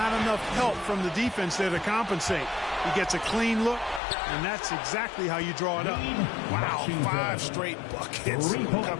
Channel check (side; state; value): right; drops out; at 4.0 s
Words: enough help from the defense there to compensate. He gets a clean look, and that's exactly how you draw it up. Wow, 5 straight buckets